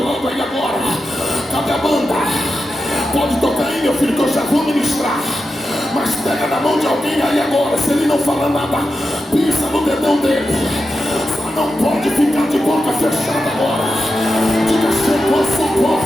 lado aí agora. Cadê a banda? Pode tocar aí, meu filho, que eu já vou ministrar. Mas pega na mão de alguém aí agora. Se ele não fala nada, pisa no dedão dele. Só não pode ficar de boca fechada agora. Diga: chegou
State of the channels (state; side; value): normal; both; correlation 0.89